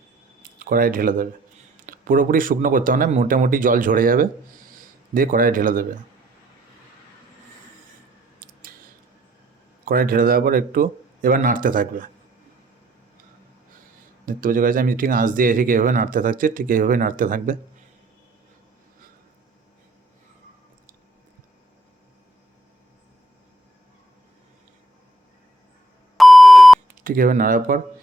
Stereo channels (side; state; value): both; normal; correlation 0.68